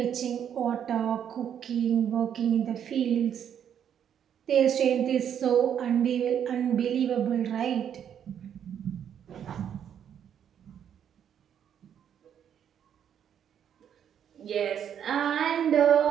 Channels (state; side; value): quieter; left; 9.0 dB